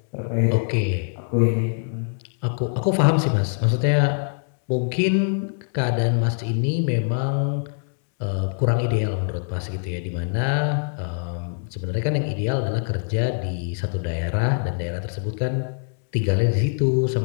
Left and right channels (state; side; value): silent; right; 63 dB below the other